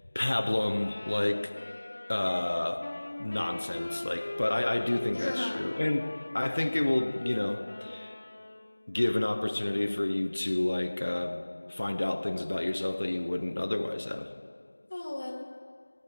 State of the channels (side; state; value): both; inverted; correlation -1.00